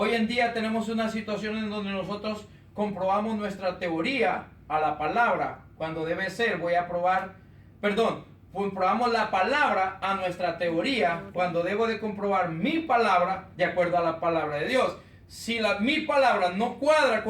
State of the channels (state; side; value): identical; both; correlation 1.00